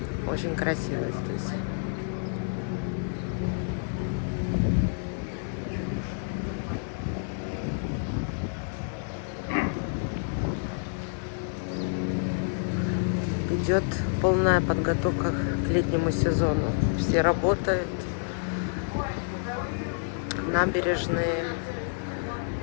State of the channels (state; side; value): silent; right; 59 dB below the other